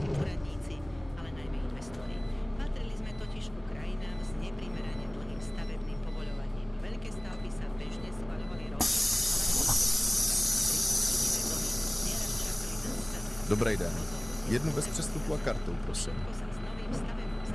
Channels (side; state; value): left; noise; hum, 20 dB below the sound